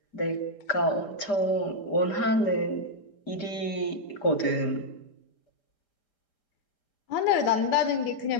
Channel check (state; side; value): late; right; 5.0 ms